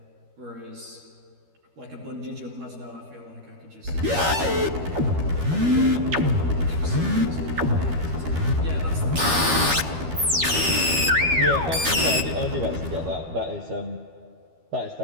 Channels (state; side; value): late; left; 13 ms